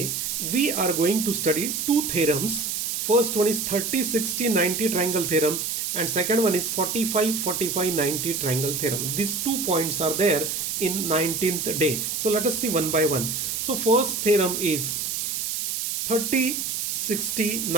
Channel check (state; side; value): noise; right; hiss, 2 dB below the sound